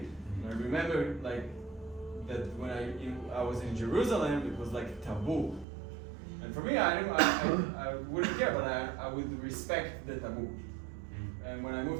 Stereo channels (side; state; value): left; drops out; at 5.7 s